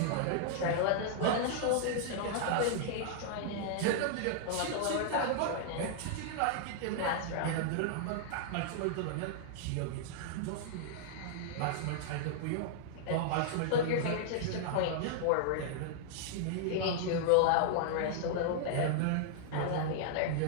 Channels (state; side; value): different; both; correlation -0.01